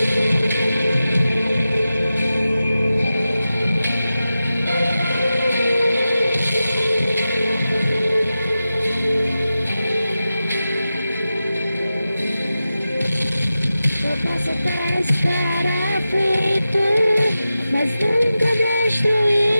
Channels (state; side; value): inverted; both; correlation -0.93